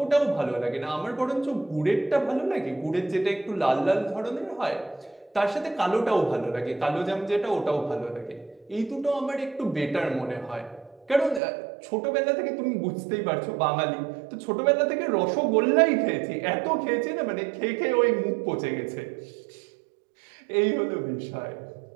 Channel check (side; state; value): left; drops out; at 11.4 s